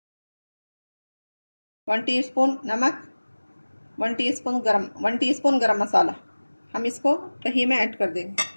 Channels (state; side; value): inverted; both; correlation -1.00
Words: 1 टीस्पून नमक, 1 टीस्पून गरम मसाला। हम इसको दही में ऐड कर देंगे।